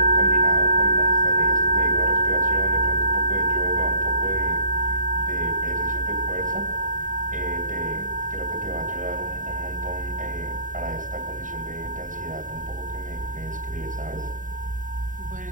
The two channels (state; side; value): late; left; 0.38 ms